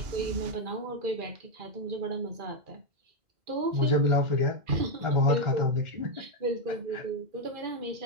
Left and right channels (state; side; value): late; left; 2.1 ms